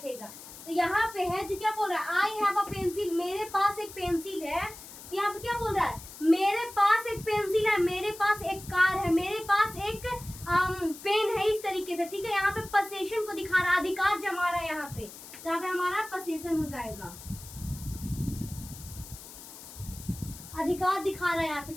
तो यहाँ पे है जो क्या बोल रहा है, आई हैव अ पेंसिल, मेरे पास एक पेंसिल है। तो यहाँ पे क्या बोल रहा है, मेरे पास एक पेंसिल है, मेरे पास एक कार है, मेरे पास एक पेन है, इस तरीके से, ठीक है। यहाँ पे पोजीशन को दिखा रहा है, अधिकार जमा रहा है यहाँ पे, तो यहाँ पे हमारा पोजीशन हो जाएगा, अधिकार दिखा रहा है यहाँ पे,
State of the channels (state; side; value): noise; left; hiss, 15 dB below the sound